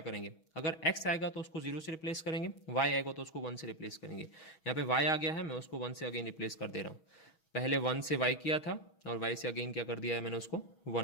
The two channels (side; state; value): right; late; 6.3 ms